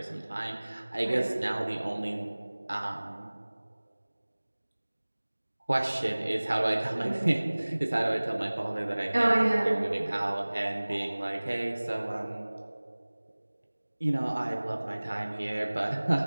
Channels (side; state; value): both; inverted; correlation -1.00